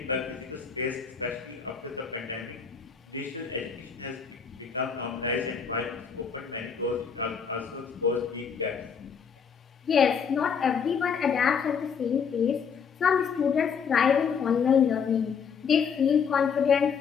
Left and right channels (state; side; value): quieter; right; 6.5 dB